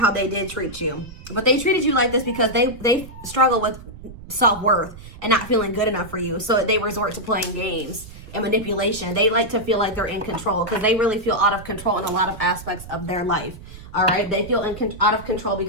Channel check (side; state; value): right; noise; rumble, 16 dB below the sound